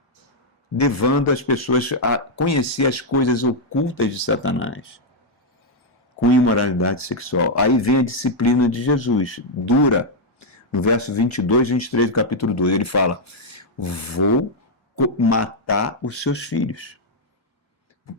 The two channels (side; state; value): both; normal; correlation -0.03